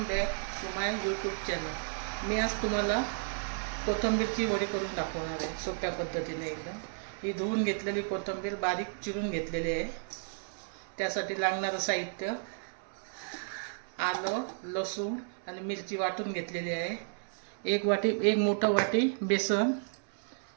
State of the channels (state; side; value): silent; left; 56 dB below the other